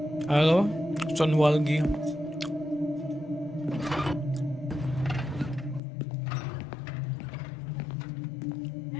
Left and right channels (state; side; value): drops out; right; at 5.8 s